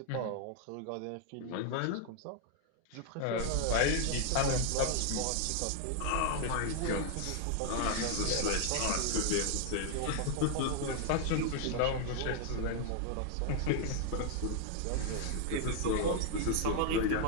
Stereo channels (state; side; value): different; both; correlation 0.00